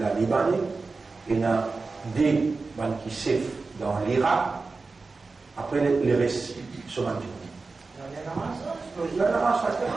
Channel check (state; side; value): quieter; left; 4.0 dB